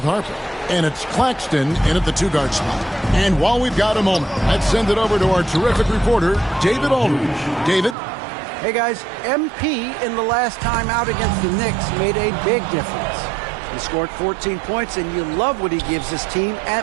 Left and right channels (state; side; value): drops out; left; at 8.0 s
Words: Harper. And it's Claxton in at the two-guard spot. And while we've got a moment, let's send it over to our terrific reporter, David Aldridge. David? Hey, guys. MP in the last time out against the Knicks made a big difference. He scored 14 points, and you love what he gives his team